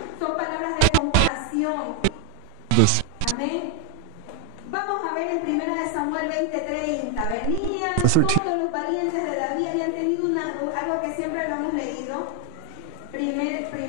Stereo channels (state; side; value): different; both; correlation 0.00